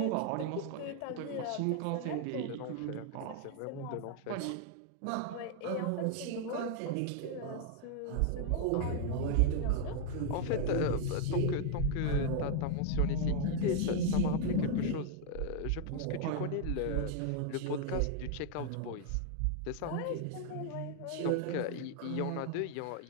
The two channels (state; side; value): different; both; correlation 0.00